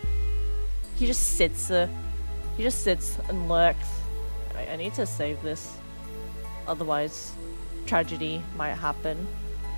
just sits and lurks. I need to save this. Otherwise, tragedy might happen.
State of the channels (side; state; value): both; inverted; correlation -1.00